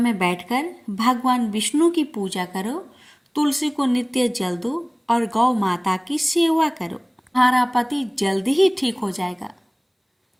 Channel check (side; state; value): both; identical; correlation 1.00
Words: बैठकर भगवान विष्णु की पूजा करो, तुलसी को नित्य जल दो और गौ माता की सेवा करो। तुम्हारा पति जल्दी ही ठीक हो जाएगा।